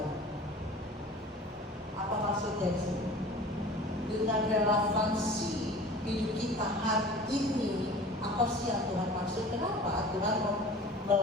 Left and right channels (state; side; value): normal; both; correlation 0.41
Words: Apa maksudnya di sini? Dengan relevansi hidup kita hari ini, apa sih yang Tuhan maksud? Kenapa Tuhan